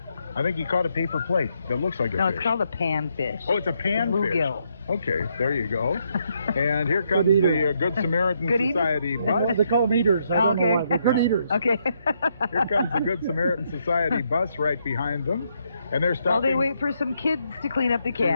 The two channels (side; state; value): both; inverted; correlation -0.77